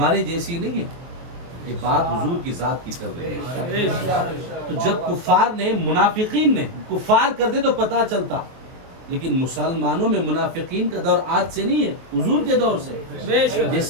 جیسی نہیں ہے، یہ بات حضور کی ذات کی چل رہی ہے۔ تو جب کفار نے، منافقین نے کفار کرتے تو پتا چلتا، لیکن مسلمانوں میں منافقین کا دور آج سے نہیں ہے، حضور کے دور سے۔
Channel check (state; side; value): late; left; 23 ms